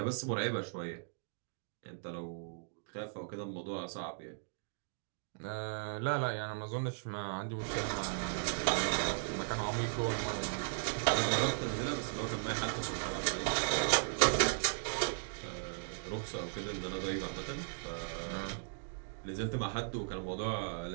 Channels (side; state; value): left; silent; digital silence